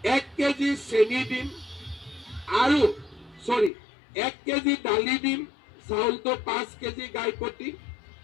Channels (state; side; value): drops out; right; at 3.7 s